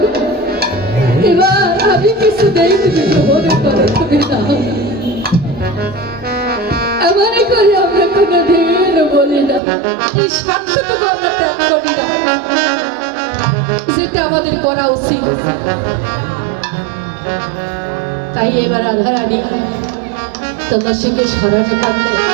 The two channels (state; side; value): drops out; left; at 9.6 s